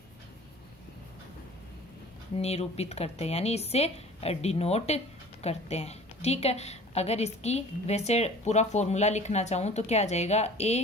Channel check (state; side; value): normal; both; correlation 0.45